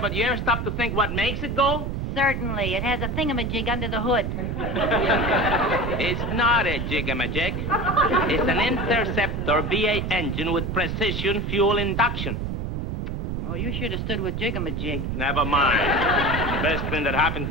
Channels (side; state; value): right; noise; rumble, 3 dB below the sound